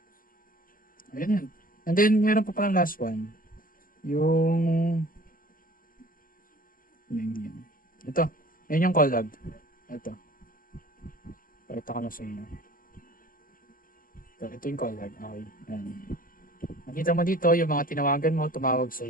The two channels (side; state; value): right; late; 0.41 ms